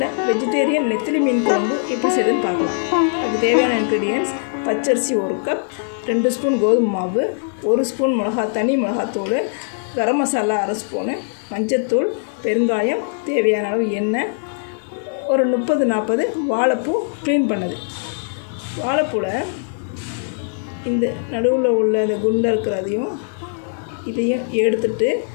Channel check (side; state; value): right; silent; digital silence